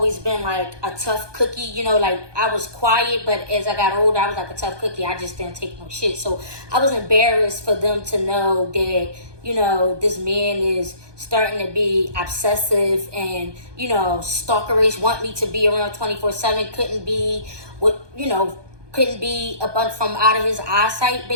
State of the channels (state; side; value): late; left; 1.2 ms